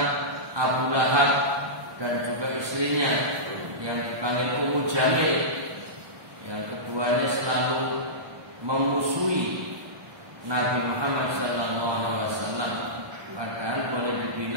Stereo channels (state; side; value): late; left; 1.2 ms